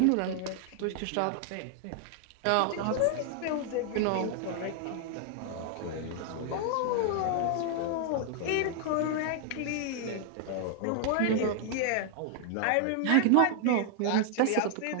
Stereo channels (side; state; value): both; different; correlation 0.00